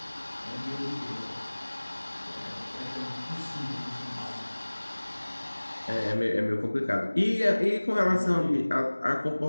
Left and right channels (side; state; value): both; inverted; correlation -1.00